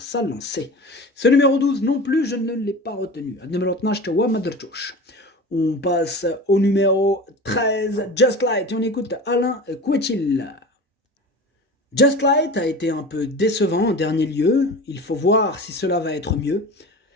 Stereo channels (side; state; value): both; normal; correlation 0.33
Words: sa lancée. Ce numéro 12 non plus, je ne l'ai pas retenu. On passe au numéro 13, Just Light, et on écoute Alain Couetil. Just Light a été un peu décevant en dernier lieu, il faut voir si cela va être mieux.